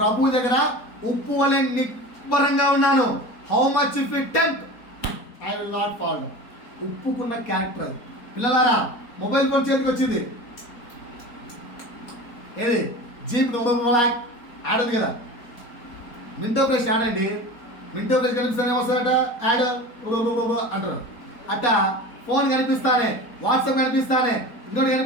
దగ్గర ఉప్పు వలె నిబ్బరంగా ఉన్నాను. How much if it tempt I will not follow. ఉప్పుకున్న క్యారెక్టర్ అది. పిల్లలారా, మొబైల్ ఫోన్ చేతికి వచ్చింది, ఏది జీప్ యాడ్ ఉంది కదా, మింటో ఫ్రెష్ యాడ్ అండి. మింటో ఫ్రెష్ కనిపిస్తానే ఏమొస్తుందట, యాడ్ అంటారు. అట్ట ఫోన్ కనిపిస్తానే, వాట్సాప్ కనిపిస్తానే, ఇంకోటి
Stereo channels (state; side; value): late; right; 4.3 ms